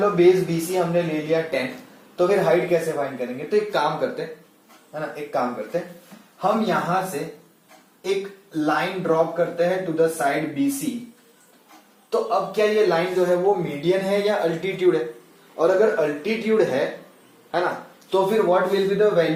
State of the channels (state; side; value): identical; both; correlation 1.00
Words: लो बेस बीसी हमने ले लिया 10, तो फिर हाइट कैसे फाइंड करेंगे? तो एक काम करते, है ना, एक काम करते, हम यहां से एक लाइन ड्रॉप करते हैं टू द साइड बीसी। तो अब क्या ये लाइन जो है वो मीडियन है या अल्टीट्यूड है? और अगर अल्टीट्यूड है ना, तो फिर what will be the